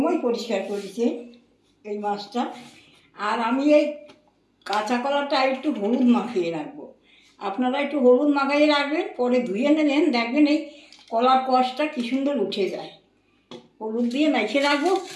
পরিষ্কার করেছে এই মাছটা। আর আমি এই কাঁচা কলাটা একটু হলুদ মাখিয়ে রাখবো। আপনারা একটু হলুদ মাখিয়ে রাখবেন, পরে ধুয়ে নেবেন, দেখবেন এই কলার কষটা কী সুন্দর উঠে যায়। হলুদ দিয়ে মেখে রাখবো,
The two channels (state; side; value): identical; both; correlation 1.00